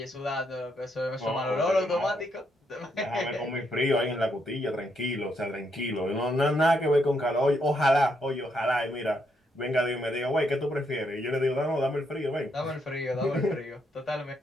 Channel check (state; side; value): normal; both; correlation 0.77